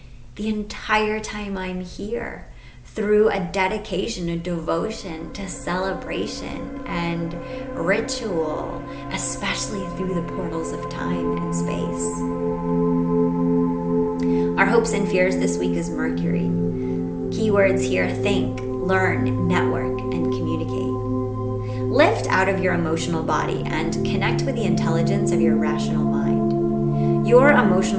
the entire time I'm here, through a dedication, a devotion to celebration and ritual, especially through the portals of time and space. Our hopes and fears this week is Mercury. Keywords here: think, learn, network, and communicate. Lift out of your emotional body and connect with the intelligence of your rational mind. Your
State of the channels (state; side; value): identical; both; correlation 1.00